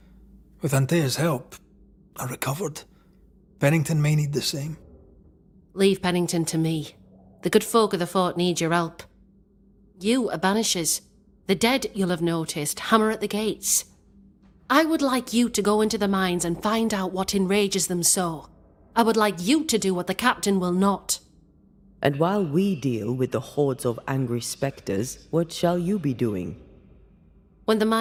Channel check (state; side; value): identical; both; correlation 1.00